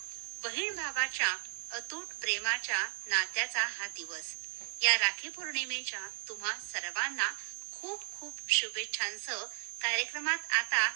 बहीण भावाच्या अतूट प्रेमाच्या नात्याचा हा दिवस। या राखी पौर्णिमेच्या तुम्हा सर्वांना खूप खूप शुभेच्छांसह कार्यक्रमात आता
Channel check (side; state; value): left; silent; digital silence